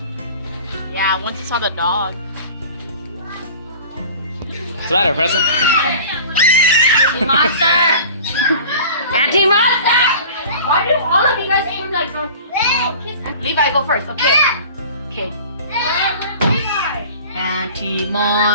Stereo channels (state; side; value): inverted; both; correlation -0.42